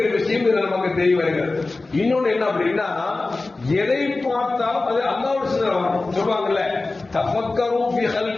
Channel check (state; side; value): quieter; right; 3.4 dB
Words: விஷயம் இதுல நமக்கு தெரிய வருகிறது. இன்னொன்னு என்ன அப்படின்னா, எதை பார்த்தாலும் அது அல்லாஹ்வுடைய சிந்தனை வரும். சொல்லுவாங்கல்ல, தஃபக்கரு ஃபீ